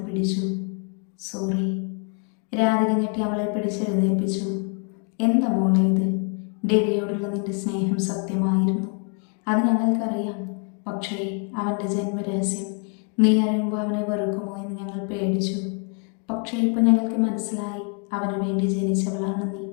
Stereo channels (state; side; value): quieter; right; 39.1 dB